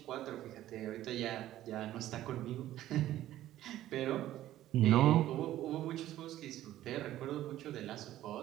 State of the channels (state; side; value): quieter; left; 13.7 dB